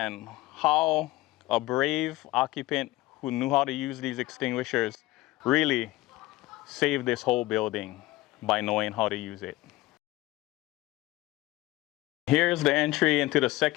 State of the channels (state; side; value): quieter; right; 18.4 dB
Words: how a brave occupant who knew how to use these extinguishers really saved this whole building by knowing how to use it. Here's the entry into the